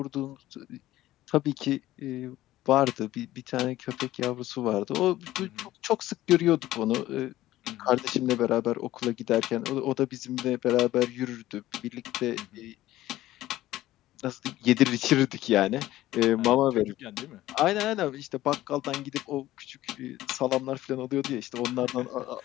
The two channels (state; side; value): quieter; right; 15.3 dB